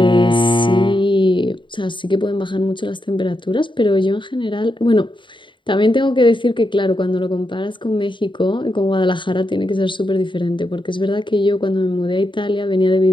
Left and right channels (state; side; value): late; right; 0.23 ms